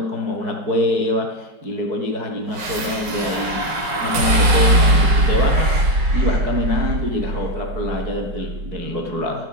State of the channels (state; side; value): late; left; 5.3 ms